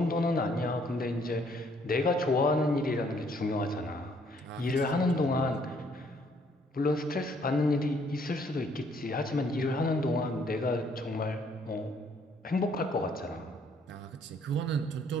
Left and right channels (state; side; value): normal; both; correlation 0.65